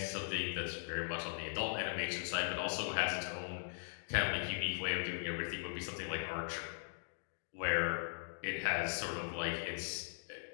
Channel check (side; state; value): right; silent; digital silence